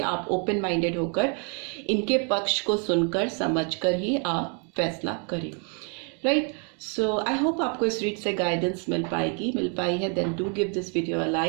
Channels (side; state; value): left; quieter; 39.0 dB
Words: आप ओपन माइंडेड होकर इनके पक्ष को सुनकर, समझकर ही आप फैसला करें, राइट। सो आई होप आपको इस रीड से गाइडेंस मिल पाई है। Then do give this video a